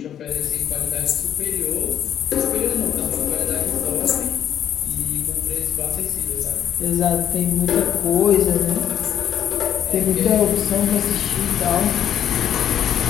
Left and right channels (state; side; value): quieter; right; 9.9 dB